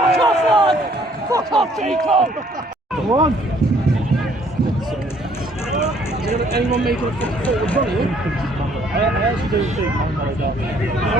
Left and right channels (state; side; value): normal; both; correlation 0.62